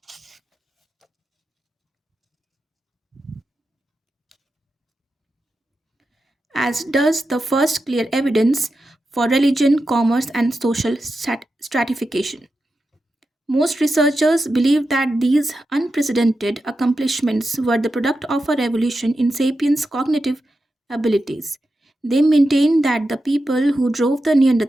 As does the first clear evidence for religion, commerce, and social stratification. Most researchers believe that these unprecedented accomplishments were the product of a revolution in sapiens' cognitive abilities. They maintain that the people who drove the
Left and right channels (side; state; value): both; normal; correlation 0.90